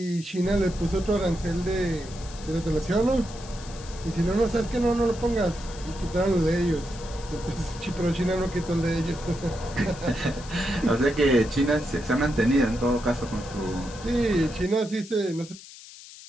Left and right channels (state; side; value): noise; left; hiss, 17 dB below the sound